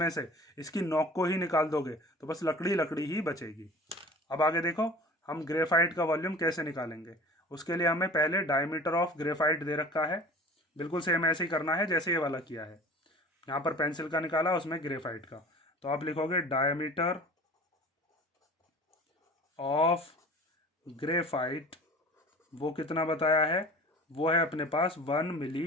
से इसकी नोक को ही निकाल दोगे तो बस लकड़ी लकड़ी ही बचेगी। अब आगे देखो हम ग्रेफाइट का वॉल्यूम कैसे निकालेंगे। उसके लिए हमें पहले डायमीटर ऑफ ग्रेफाइट दे रखा है, बिल्कुल सेम ऐसे ही करना है जैसे ये वाला किया है। यहाँ पर पेंसिल का निकाला, उसमें ग्रेफाइट का। तो आप लिखोगे डायमीटर ऑफ ग्रेफाइट, वो कितना बताया है, वो है अपने पास 1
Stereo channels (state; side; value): normal; both; correlation 0.41